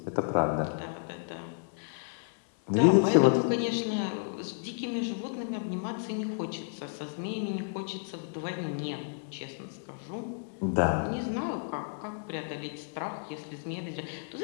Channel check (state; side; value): silent; right; digital silence